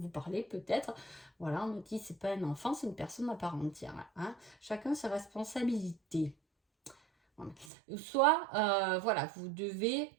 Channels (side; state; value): left; drops out; at 7.7 s